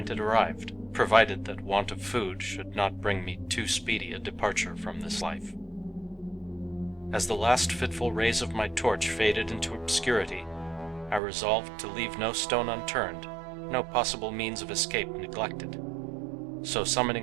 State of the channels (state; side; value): drops out; left; at 11.2 s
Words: had arrived, provided that want of food should not bring me too speedy a departure from this life. As the last fitful rays of my torch faded into obscurity, I resolved to leave no stone unturned, no possible means of escape neglected. So